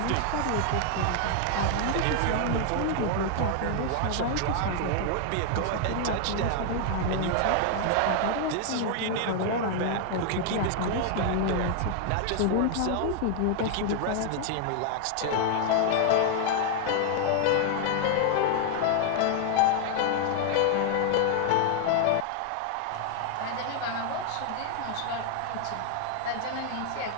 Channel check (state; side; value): different; both; correlation 0.00